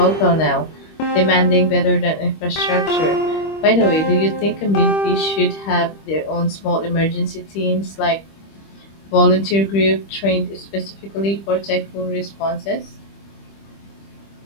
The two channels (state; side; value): late; right; 25 ms